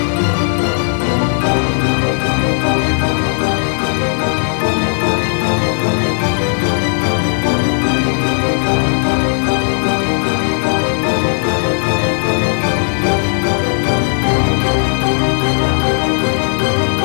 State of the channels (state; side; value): silent; right; digital silence